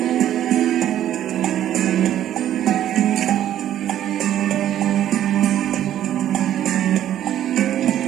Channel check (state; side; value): quieter; left; 11.5 dB